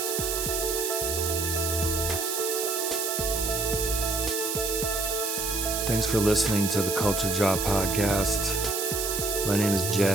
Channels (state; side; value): noise; right; hiss, 1 dB below the sound